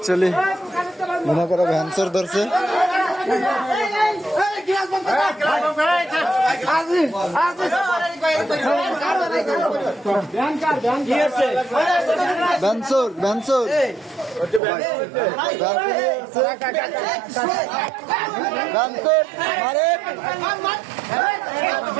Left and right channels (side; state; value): left; drops out; at 14.6 s